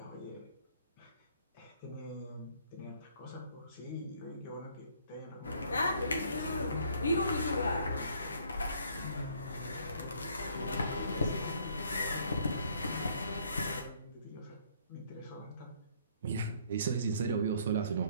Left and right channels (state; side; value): inverted; both; correlation -0.63